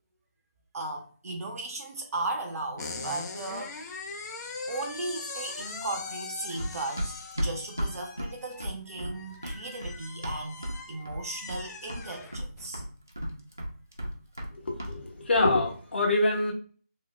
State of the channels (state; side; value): inverted; both; correlation -0.67